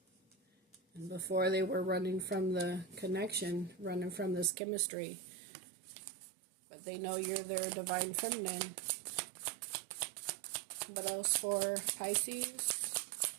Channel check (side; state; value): left; drops out; at 4.5 s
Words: And before they were running from the connection, running from this chemistry. But they know you're their Divine Feminine. What else for Pisces?